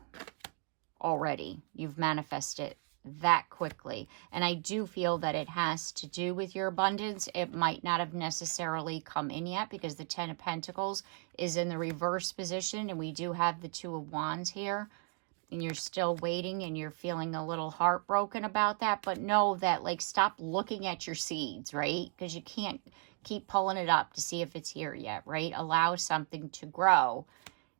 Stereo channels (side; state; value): left; quieter; 39.0 dB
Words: already. You've manifested that quickly. And I do feel that it has to do with your abundance. It might not have necessarily come in yet because the Ten of Pentacles is in the reverse position. And we do have the Two of Wands here. And you're still waiting and you're feeling a little heartbroken about that. But know that, like, stop looking at your seeds, right? Because you can't keep pulling it up to see if it's here yet, right? Allow something to grow.